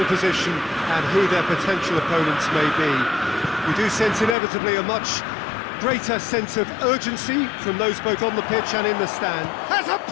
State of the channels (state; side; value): drops out; right; at 4.4 s